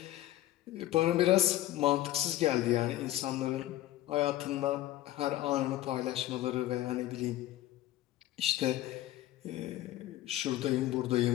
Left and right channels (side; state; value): right; quieter; 14.7 dB